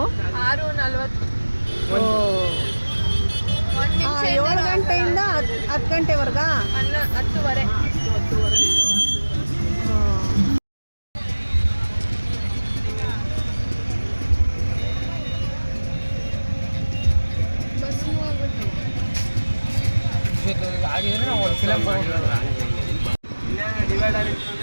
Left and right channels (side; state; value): both; inverted; correlation -1.00